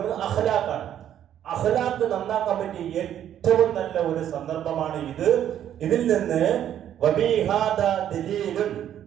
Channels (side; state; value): left; quieter; 10.5 dB